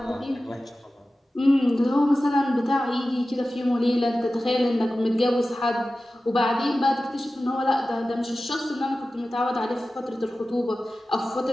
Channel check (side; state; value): both; normal; correlation 0.95